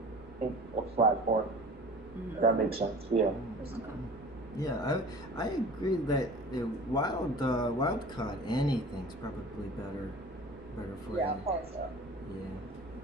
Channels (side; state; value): right; noise; rumble, 21 dB below the sound